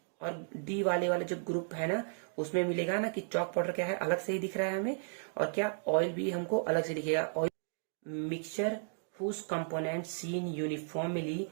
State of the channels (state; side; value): silent; left; digital silence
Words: और डी वाले जो ग्रुप है ना उसमें मिलेगा ना कि चॉक पाउडर क्या है, अलग से ही दिख रहा है हमें, और क्या, ऑयल भी हमको अलग से दिखेगा। Oil mixture whose component seen uniformly,